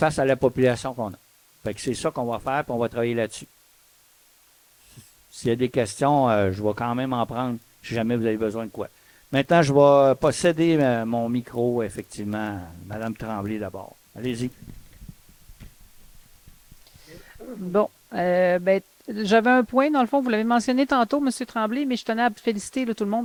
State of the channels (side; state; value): both; identical; correlation 1.00